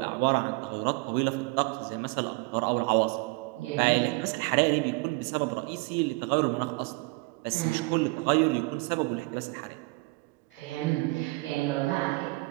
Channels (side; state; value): left; quieter; 25.8 dB